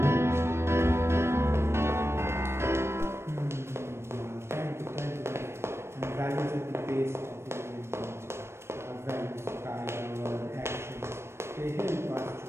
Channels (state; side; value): late; left; 0.12 ms